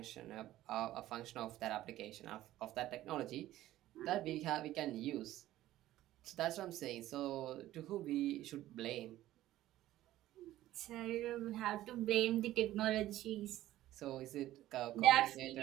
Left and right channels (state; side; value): quieter; left; 14.6 dB